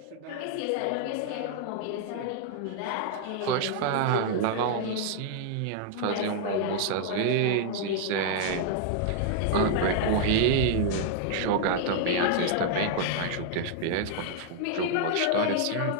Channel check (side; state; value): both; different; correlation 0.00